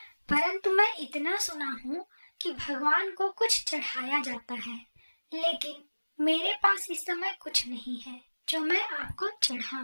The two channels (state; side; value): inverted; both; correlation -1.00